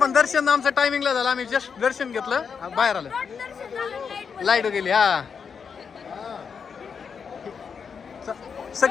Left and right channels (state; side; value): quieter; right; 6.3 dB